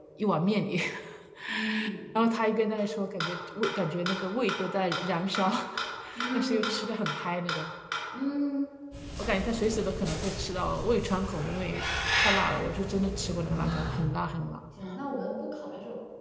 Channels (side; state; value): both; identical; correlation 1.00